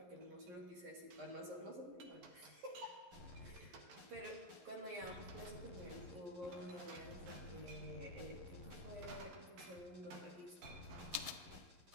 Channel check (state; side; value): late; left; 11 ms